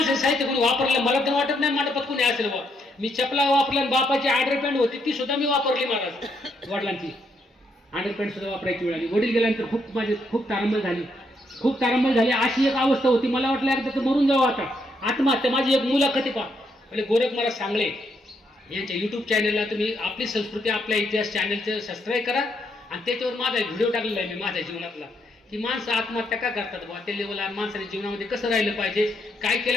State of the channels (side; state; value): both; normal; correlation 0.76